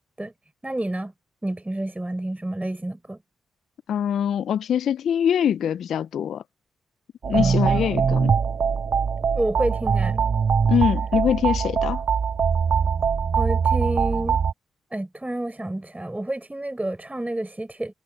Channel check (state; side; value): normal; both; correlation 0.76